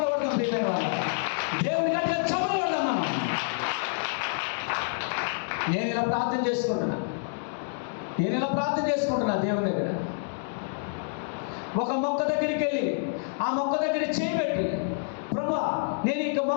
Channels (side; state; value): right; silent; digital silence